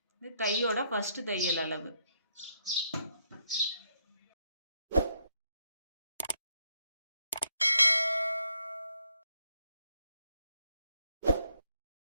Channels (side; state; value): both; inverted; correlation -0.75